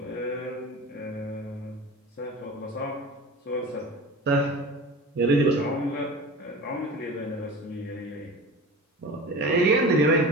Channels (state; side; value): normal; both; correlation 0.34